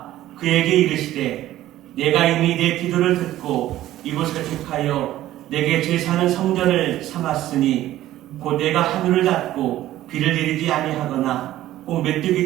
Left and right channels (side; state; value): left; quieter; 14.2 dB